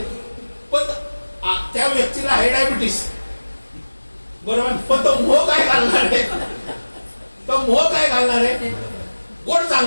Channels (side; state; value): both; inverted; correlation -1.00